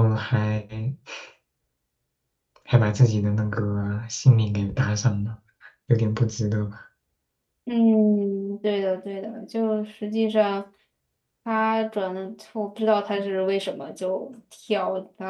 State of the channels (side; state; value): both; identical; correlation 1.00